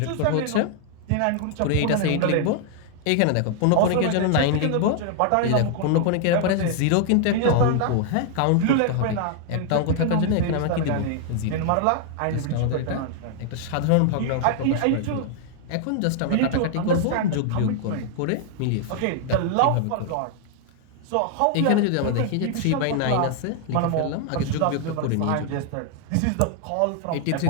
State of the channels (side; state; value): both; different; correlation 0.00